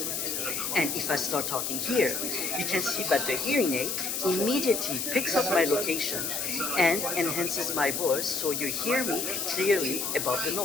And if I start talking here, you can see that the hearing aid immediately picks up my location and enhances my voice so you hear me clearly above the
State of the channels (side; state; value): left; noise; hiss, 2 dB below the sound